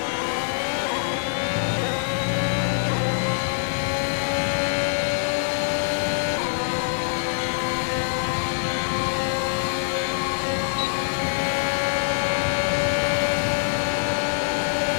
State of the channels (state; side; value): silent; right; digital silence